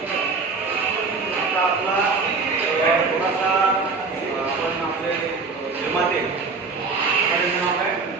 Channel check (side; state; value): left; quieter; 4.4 dB